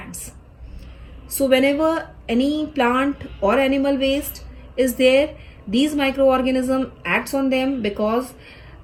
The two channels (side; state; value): both; identical; correlation 1.00